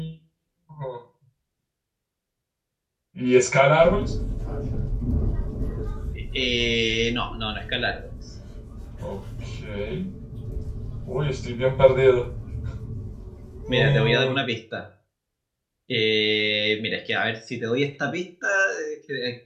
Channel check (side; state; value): both; identical; correlation 1.00